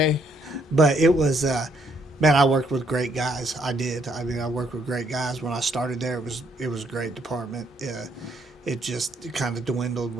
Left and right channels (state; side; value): normal; both; correlation 0.71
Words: But it was, man, I worked with great guys. I did. I mean, I worked with great guys when I started there. It was a great department. It just kind of dwindled,